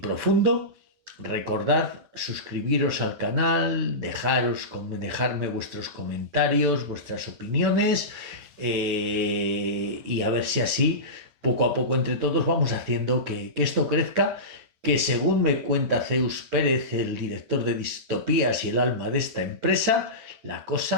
recordad suscribiros al canal, dejarme vuestros comentarios, vuestras opiniones, y a ver si así, poco a poco entre todos, vamos haciendo que esto crezca, que según me cuenta Zeus Pérez, el director de Distopías y el alma de esta empresa, la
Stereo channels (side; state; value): left; late; 9.1 ms